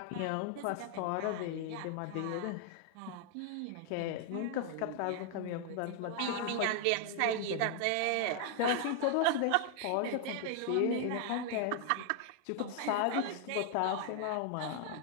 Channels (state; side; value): different; both; correlation 0.00